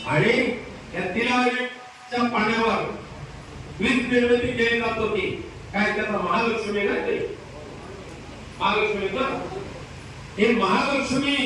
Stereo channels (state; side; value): identical; both; correlation 1.00